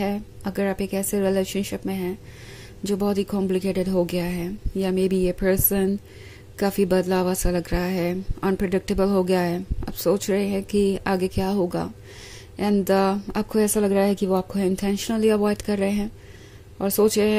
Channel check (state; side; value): identical; both; correlation 1.00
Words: अगर आप एक ऐसे रिलेशनशिप में हैं जो बहुत ही कॉम्प्लिकेटेड हो गया है, या मे बी ये पर्सन काफ़ी बदलावा सा लग रहा है, अनप्रिडिक्टेबल हो गया है। आप सोच रहे हैं कि आगे क्या होगा एंड आपको ऐसा लग रहा है कि वो आपको इंटेंशनली अवॉइड कर रहे हैं और सोच रहे